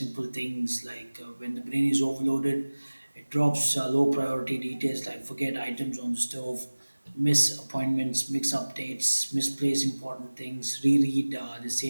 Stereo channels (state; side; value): inverted; both; correlation -1.00